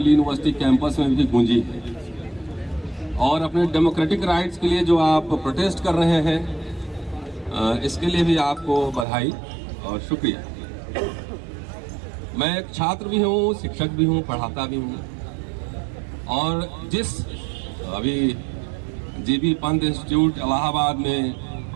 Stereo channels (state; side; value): drops out; left; at 9.1 s